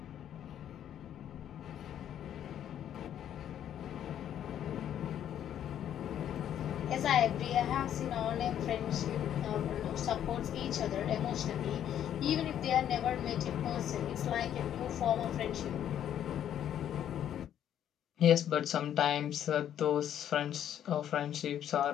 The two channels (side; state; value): right; quieter; 10.3 dB